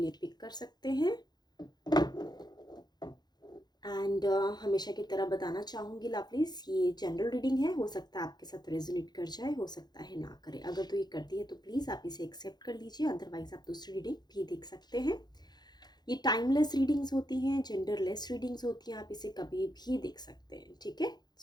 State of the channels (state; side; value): late; right; 0.20 ms